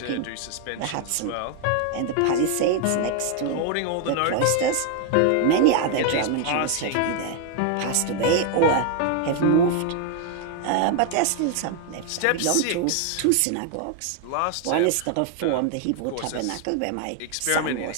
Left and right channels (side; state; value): both; different; correlation 0.00